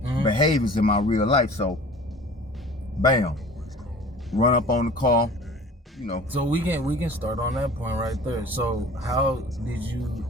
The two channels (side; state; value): both; normal; correlation 0.44